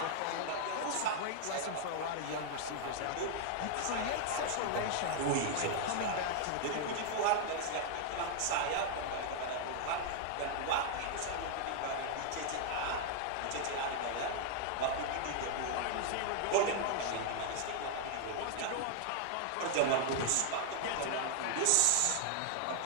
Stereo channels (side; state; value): both; different; correlation 0.00